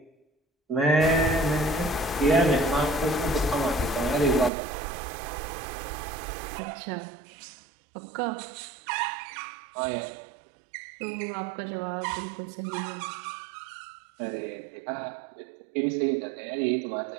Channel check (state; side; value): drops out; left; at 4.5 s